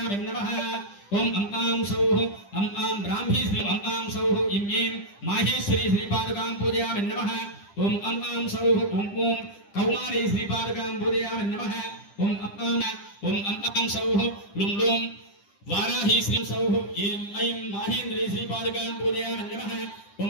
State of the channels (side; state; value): right; late; 10 ms